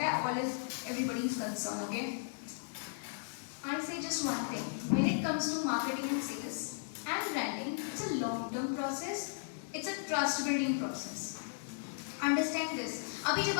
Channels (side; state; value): right; silent; digital silence